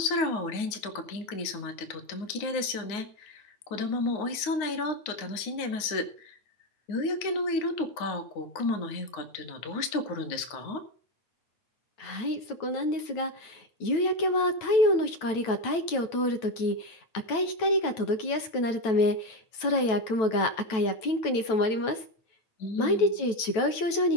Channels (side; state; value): right; late; 9.1 ms